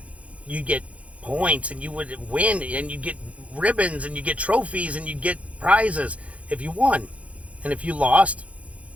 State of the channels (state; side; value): late; left; 0.064 ms